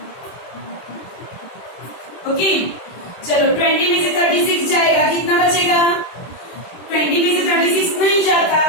Okay, चलो 20 में से 36 जाएगा, कितना बचेगा? 20 में से 36 नहीं जाता,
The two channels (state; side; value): late; right; 23 ms